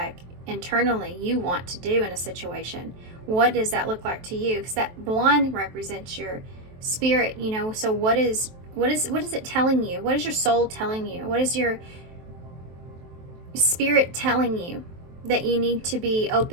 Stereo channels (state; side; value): late; left; 23 ms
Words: internally you want to do in a situation? What does that look like to you? Because that blonde represents your spirit, you know. So what is it telling you? What is your soul telling you? What is your spirit telling you that you need to be